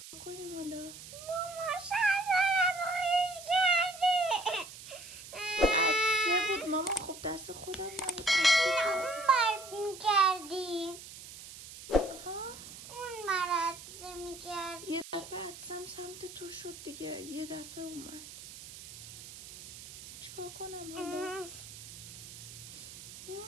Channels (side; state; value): right; noise; hiss, 14 dB below the sound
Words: کنیم حالا؟ ماما شلوارم خیس کردی. عدسه بود ماما. خب دست خودم نبود. اون مرد میکردی. ها؟ اون مرد میکردی. یه دفعه عدسم سمت تو شد دیگه. یه دفعه اومد. چیکار کنم حالا؟